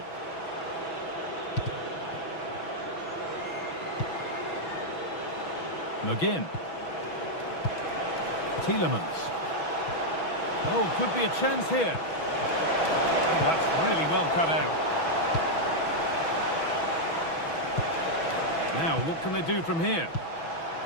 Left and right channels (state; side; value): late; right; 6.1 ms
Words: McGinn. Tielemans. Oh, could be a chance here. Oh, that's really well cut out. Now, what can they do from here?